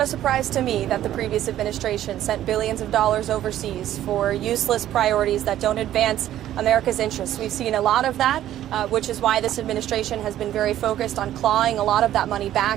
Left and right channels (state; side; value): quieter; left; 12.5 dB